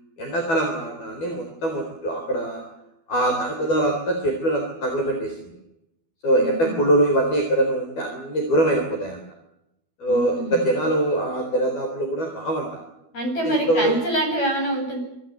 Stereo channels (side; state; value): right; late; 12 ms